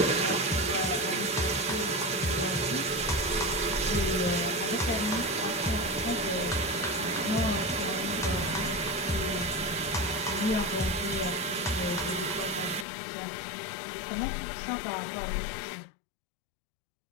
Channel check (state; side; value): drops out; right; at 12.9 s